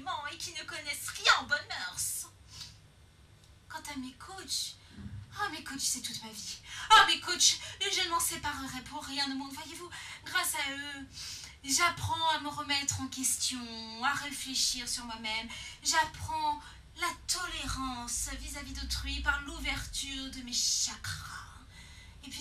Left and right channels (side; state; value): both; identical; correlation 1.00